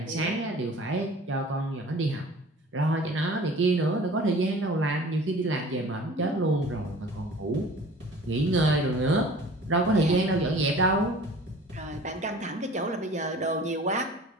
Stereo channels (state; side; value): normal; both; correlation 0.45